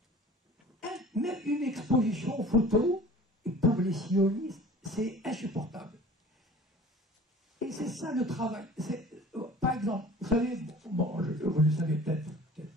Même une exposition photo, pour les sionistes, c'est insupportable. Et c'est ça le travail. Par exemple, vous savez, vous le savez peut-être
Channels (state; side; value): normal; both; correlation 0.45